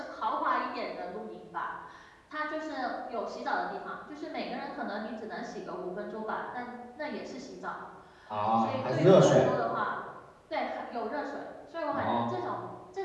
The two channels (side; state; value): both; identical; correlation 1.00